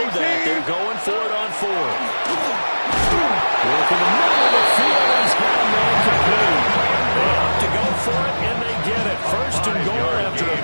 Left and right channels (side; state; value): both; inverted; correlation -1.00